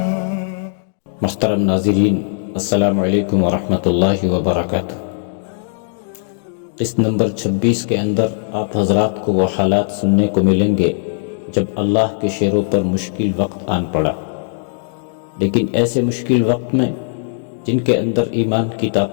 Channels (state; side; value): silent; right; digital silence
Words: محترم ناظرین، السلام علیکم ورحمۃ اللہ وبرکاتہ۔ قسط نمبر 26 کے اندر آپ حضرات کو وہ حالات سننے کو ملیں گے جب اللہ کے شیروں پر مشکل وقت آن پڑا، لیکن ایسے مشکل وقت میں جن کے اندر ایمان کی